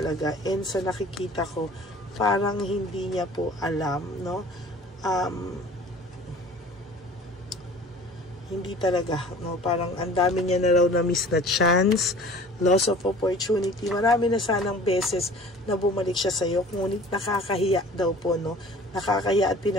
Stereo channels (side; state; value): both; normal; correlation 0.46